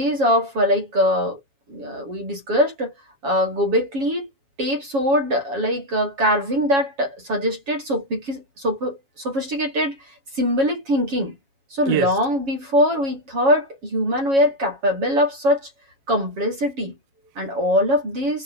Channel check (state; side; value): late; left; 7.3 ms